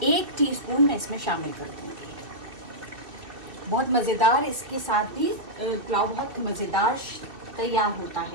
1 टीस्पून मैं इसमें शामिल कर दूँगी। बहुत मज़ेदार इसके साथ भी पुलाव बहुत मज़ेदार तैयार होता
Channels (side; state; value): left; late; 2.5 ms